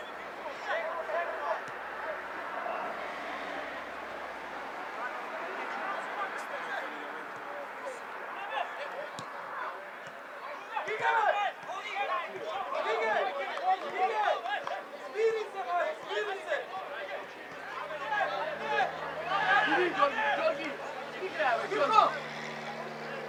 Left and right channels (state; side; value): identical; both; correlation 1.00